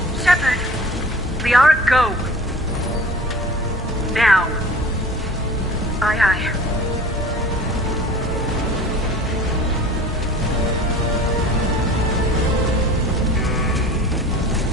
Shepard! Liara, go! Now. Aye, aye.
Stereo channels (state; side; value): normal; both; correlation 0.42